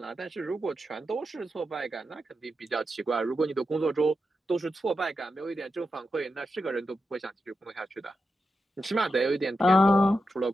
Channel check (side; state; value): both; normal; correlation 0.88